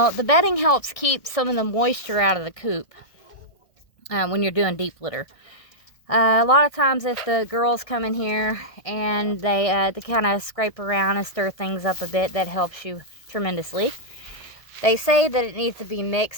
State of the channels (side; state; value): right; late; 1.6 ms